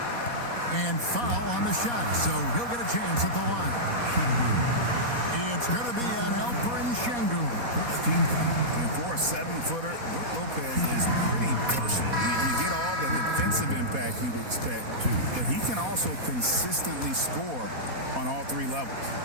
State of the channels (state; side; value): late; left; 4.2 ms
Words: And foul on the shot, so he'll get a chance at the line. It's going to be on Alperen Şengün. And for a 7-footer, Brook Lopez is pretty versatile. You get all the defensive impact you'd expect, but he can also consistently score on all 3 levels.